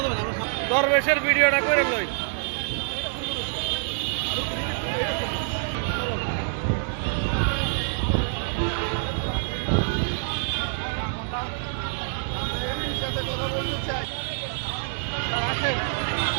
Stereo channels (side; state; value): left; silent; 61 dB below the other